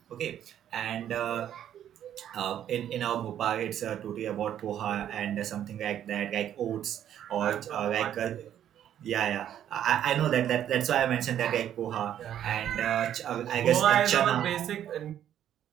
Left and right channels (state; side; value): quieter; left; 10.5 dB